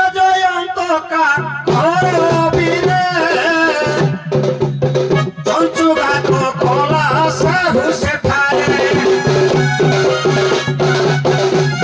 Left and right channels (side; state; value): both; identical; correlation 1.00